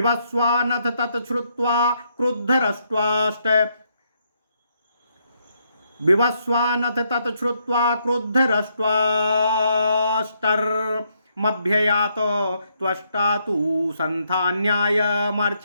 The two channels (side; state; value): both; inverted; correlation -0.75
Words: तत् श्रुत्वा क्रुद्धरष्ट्वाष्टर्मभ्ययात त्वष्टा तु